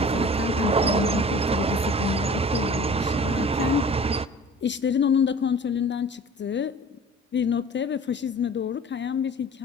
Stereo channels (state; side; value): normal; both; correlation 0.44